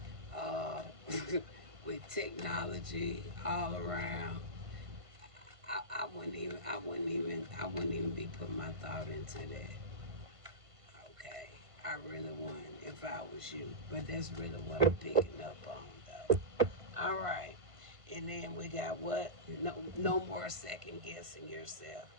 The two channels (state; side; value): late; left; 1.5 ms